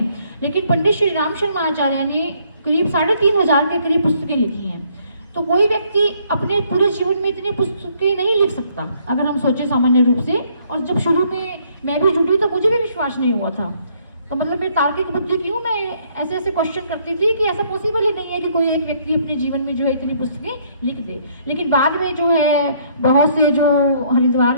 लेकिन पंडित श्री राम शर्मा आचार्य ने करीब 3,500 के करीब पुस्तकें लिखी हैं। तो कोई व्यक्ति अपने पूरे जीवन में इतनी पुस्तकें नहीं लिख सकता अगर हम सोचे सामान्य रूप से। और जब शुरू में मैं भी जुड़ी तो मुझे भी विश्वास नहीं हुआ था, तो मतलब मेरी तार्किक बुद्धि क्यों, मैं ऐसे ऐसे क्वेश्चन करती थी कि ऐसा पॉसिबल ही नहीं है कि कोई एक व्यक्ति अपने जीवन में जो है इतनी पुस्तकें लिख दे। लेकिन बाद में जो है बहुत से जो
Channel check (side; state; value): both; inverted; correlation -0.66